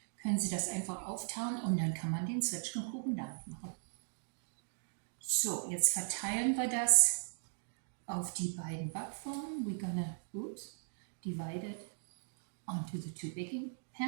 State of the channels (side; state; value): left; silent; digital silence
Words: können Sie das einfach auftauen und dann kann man den Zwetschgenkuchen damit machen. So, jetzt verteilen wir das auf die beiden Backformen. We're gonna divide it onto the two baking